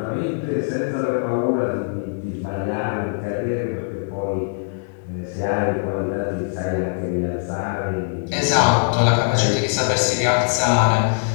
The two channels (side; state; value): right; silent; 62 dB below the other